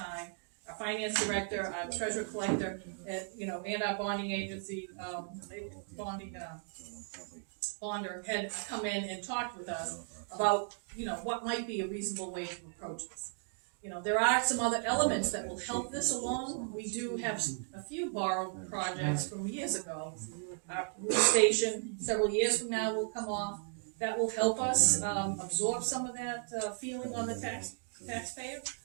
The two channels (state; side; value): silent; left; 54 dB below the other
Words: Our finance director, our treasurer collector, you know, and our bonding agency, bonder had come in and talked with us about, you know, what might be a reasonable way to approach this. You know, there are some other elements that will help this along. We do have a few borrowed projects from years ago. Our police station, several years from now, will come off. That will help us absorb some of that feeling on the taxpayer.